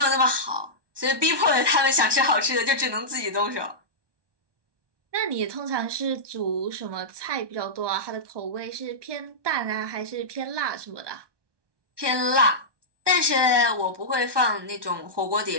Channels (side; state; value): left; late; 1.2 ms